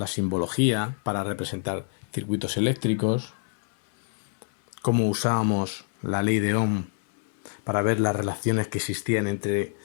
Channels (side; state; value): right; silent; 58 dB below the other